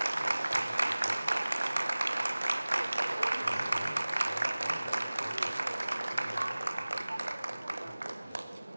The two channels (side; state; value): both; inverted; correlation -0.99